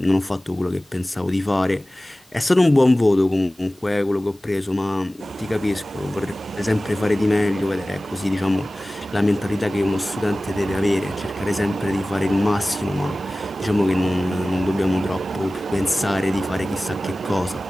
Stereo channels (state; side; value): normal; both; correlation 0.97